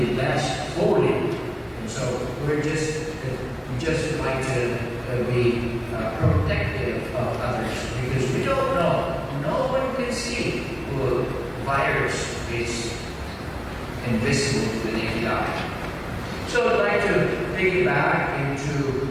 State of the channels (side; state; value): both; identical; correlation 1.00